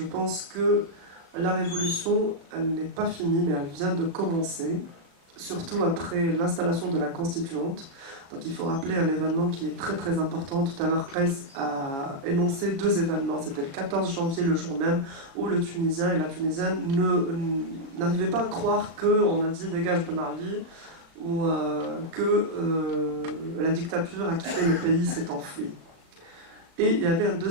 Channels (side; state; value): left; late; 36 ms